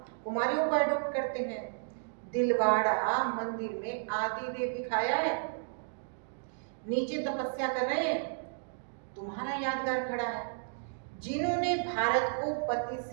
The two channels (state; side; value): silent; left; digital silence